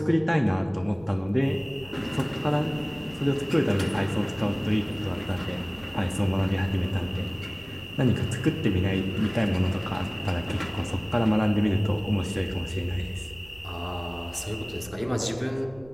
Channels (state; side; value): noise; right; rumble, 23 dB below the sound